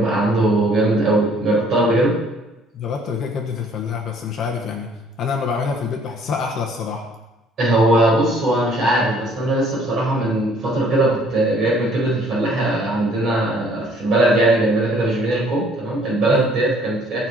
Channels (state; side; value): normal; both; correlation 0.59